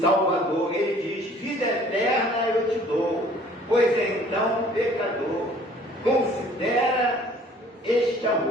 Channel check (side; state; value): both; normal; correlation 0.54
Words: Ele diz: vida eterna eu te dou, pois então, pecador, considera este